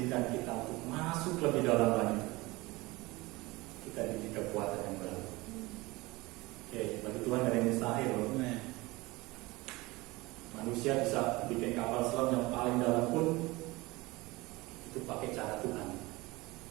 kita untuk masuk lebih dalam lagi, kita diberi kekuatan yang baru. Oke, bagi Tuhan gak ada yang mustahil loh. Manusia bisa bikin kapal selam yang paling dalam pun itu pakai cara Tuhan.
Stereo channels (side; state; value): left; quieter; 21.8 dB